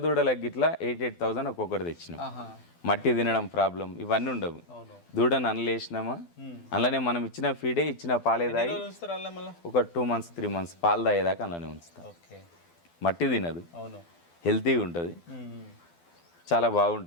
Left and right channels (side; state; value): right; late; 12 ms